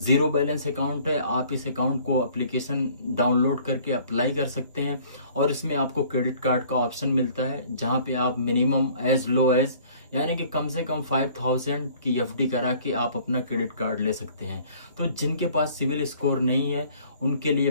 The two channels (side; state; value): both; inverted; correlation -0.54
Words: बैलेंस अकाउंट है। आप इस अकाउंट को एप्लीकेशन डाउनलोड करके अप्लाई कर सकते हैं और इसमें आपको क्रेडिट कार्ड का ऑप्शन मिलता है, जहां पे आप मिनिमम एज लो एज यानी कि कम से कम 5000 की एफडी करा के आप अपना क्रेडिट कार्ड ले सकते हैं। तो जिनके पास सिविल स्कोर नहीं है उनके लिए